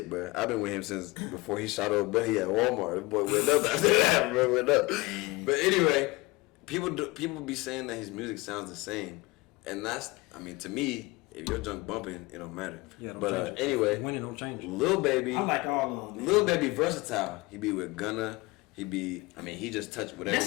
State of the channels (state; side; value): quieter; right; 22.9 dB